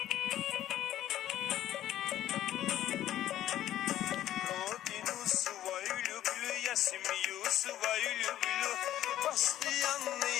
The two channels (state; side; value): quieter; right; 12.6 dB